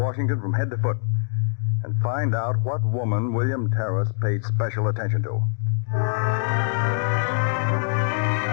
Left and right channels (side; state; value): right; silent; digital silence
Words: from head to foot, and find out what woman William Terrace paid special attention to.